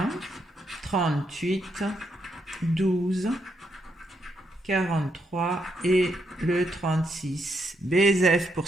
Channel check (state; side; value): normal; both; correlation 0.78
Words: 38, 12, 43 et le 36. BSF pour